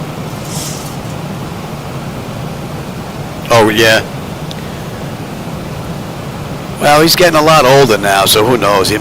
Oh yeah. Well, he's getting a lot older now, so who knows?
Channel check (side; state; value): both; identical; correlation 1.00